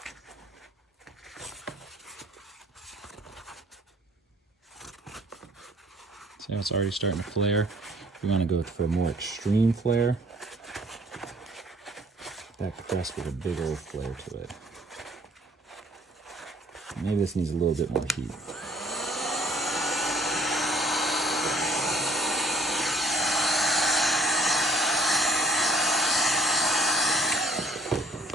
See how it's already starting to flare? We want to go for a more extreme flare. That crest with a big old flare to it. Maybe this needs a little bit more heat.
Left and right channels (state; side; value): normal; both; correlation 0.56